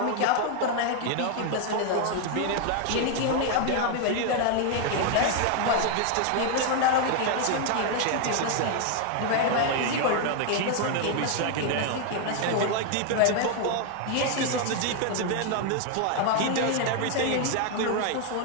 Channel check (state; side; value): different; both; correlation 0.00